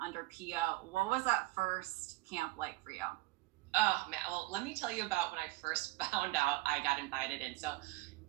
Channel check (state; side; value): quieter; left; 21.1 dB